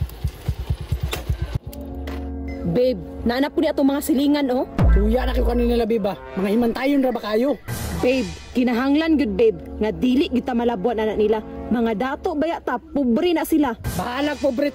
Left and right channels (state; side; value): identical; both; correlation 1.00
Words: Babe, naanap ko ni atong mga silingan oh. Tuya na kayo kanina babe ba? Mga himantayon ra ba kayo? Babe, kinahanglan gud babe, nga dili kita malabuan anak nila. Mga dato baya ta, pobre na sila. Bahalag pobre